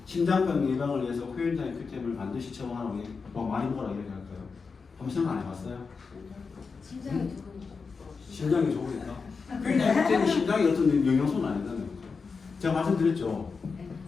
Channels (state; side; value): quieter; right; 4.9 dB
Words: 심장병 예방을 위해서 코엔자임 큐텐을 반드시 처방하라고 많이 먹으라고 얘기할까요? 한번 생각 안 해봤어요? 심장이 좋으니까. 코엔자임 큐텐이 심장에 어떤 영양소는 아니잖아요. 제가 말씀드렸죠.